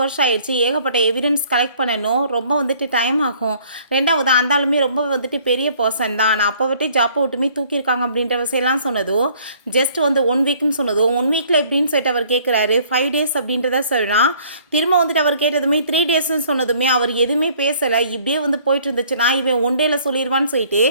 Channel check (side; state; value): both; inverted; correlation -0.58